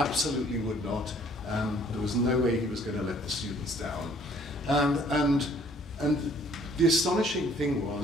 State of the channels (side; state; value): both; normal; correlation 0.59